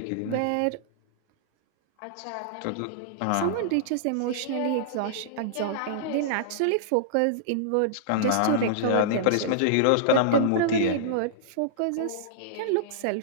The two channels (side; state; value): both; different; correlation -0.02